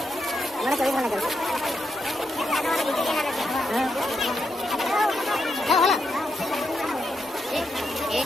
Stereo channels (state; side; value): normal; both; correlation 0.82